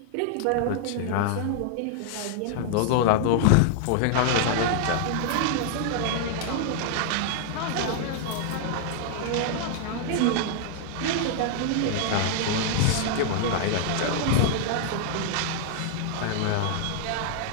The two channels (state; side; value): different; both; correlation 0.00